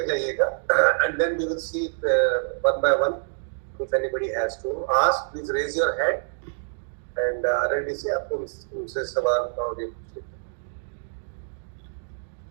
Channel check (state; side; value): silent; left; digital silence